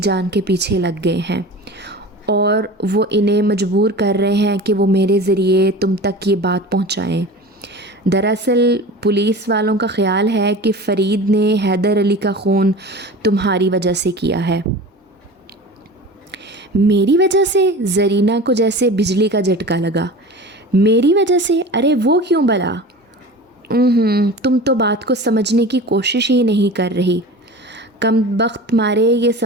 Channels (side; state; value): both; normal; correlation 0.35